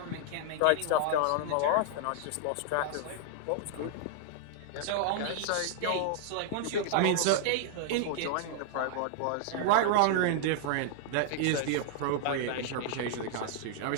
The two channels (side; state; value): both; different; correlation -0.01